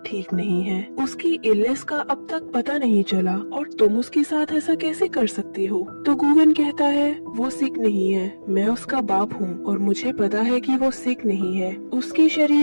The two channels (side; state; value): both; inverted; correlation -1.00